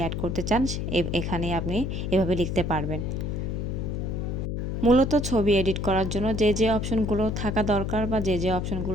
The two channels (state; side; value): noise; left; hum, 2 dB below the sound